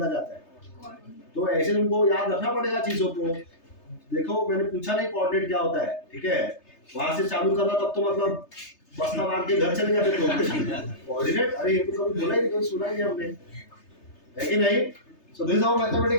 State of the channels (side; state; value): right; late; 3.3 ms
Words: जाता है? तो ऐसे तुमको याद रखना पड़ेगा चीजों को. देखो मैंने पूछा नहीं कोऑर्डिनेट क्या होता है. ठीक है, वहां से चालू करना, तब तो मतलब बस्ता मार के घर चले जाते तो कोऑर्डिनेट. अरे ये तो कभी बोला ही नहीं, कभी सुना ही नहीं हमने, है कि नहीं? So this how